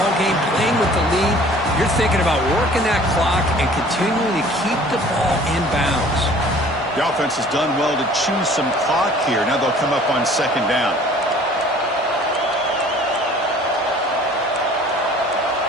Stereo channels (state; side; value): normal; both; correlation 0.50